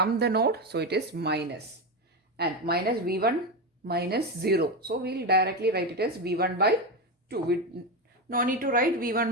the node, so it is minus, and minus V1 minus 0. So we will directly write it as V1 by 2. We no need to write V1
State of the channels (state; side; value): normal; both; correlation 0.14